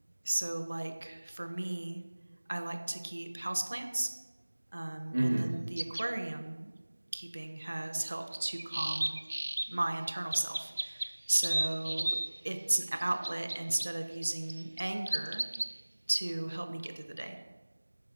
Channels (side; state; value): both; inverted; correlation -1.00